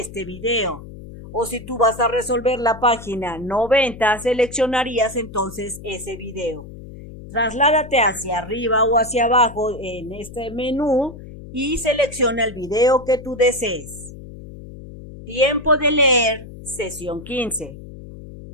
video. O si tú vas a resolver la página 90, seleccionarías entonces ese video. Trasládate hacia arriba o hacia abajo en este menú y selecciona el video que tú desees. Tiempo de leer, sesión 15.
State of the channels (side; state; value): left; noise; hum, 15 dB below the sound